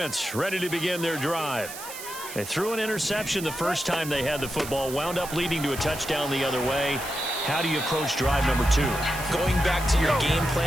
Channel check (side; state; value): right; noise; hiss, 11 dB below the sound